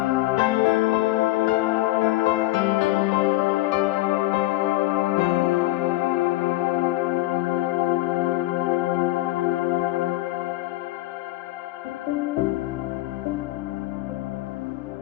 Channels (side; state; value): right; quieter; 18.2 dB